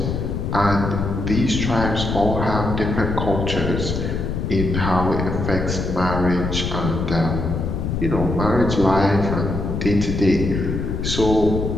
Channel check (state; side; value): noise; left; rumble, 2 dB below the sound